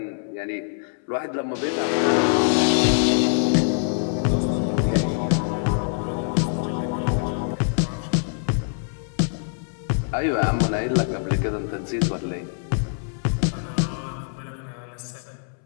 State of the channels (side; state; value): right; silent; 63 dB below the other